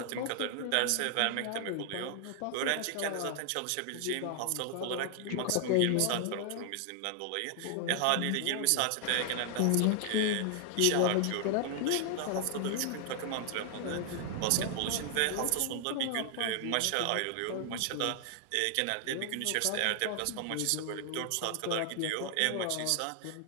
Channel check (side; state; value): both; different; correlation 0.00